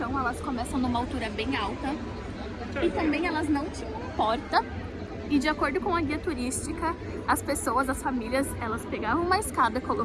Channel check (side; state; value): both; identical; correlation 1.00